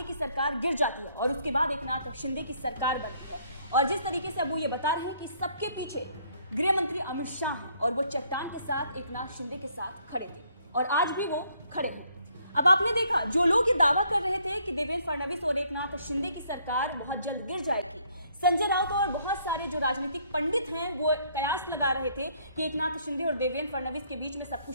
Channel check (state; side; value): inverted; both; correlation -0.66